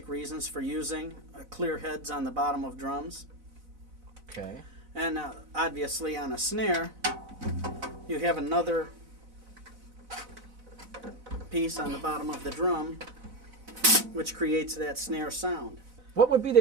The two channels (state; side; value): late; left; 4.0 ms